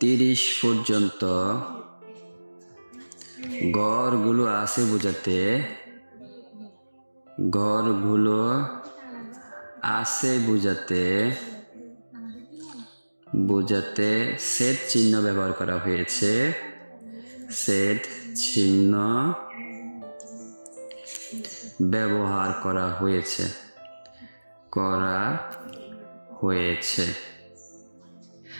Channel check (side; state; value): both; inverted; correlation -1.00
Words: 30 পর্যন্ত ঘরগুলো আছে বোঝাতে ছেদ চিহ্ন ব্যবহার করা হয়েছে। ছেদ চিহ্ন ব্যবহার করা হয়েছে।